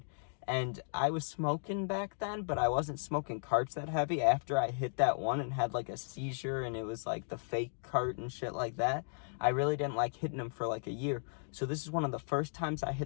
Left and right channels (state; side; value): silent; right; digital silence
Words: And I was smoking back then, but I wasn't smoking carts that heavy. After I hit that one and had like a seizure and it was like the fake cart and shit like that, I really didn't like hitting him for like a year. So this is one of the first times I